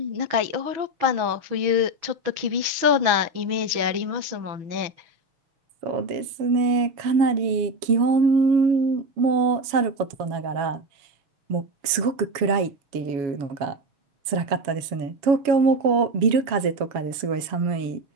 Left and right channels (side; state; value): left; late; 7.2 ms